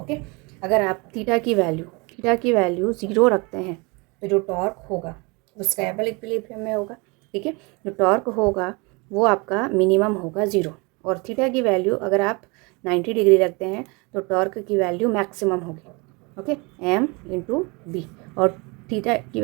अगर आप थीटा की वैल्यू 0 रखते हैं तो जो टॉर्क होगा वो स्टेबल इक्विलिब्रियम में होगा, ठीक है। जो टॉर्क होगा वो आपका मिनिमम होगा 0, और थीटा की वैल्यू अगर आप 90 डिग्री रखते हैं तो टॉर्क की वैल्यू मैक्सिमम होगी। ओके, एम इंटू बी, और थीटा की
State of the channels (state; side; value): quieter; left; 28.3 dB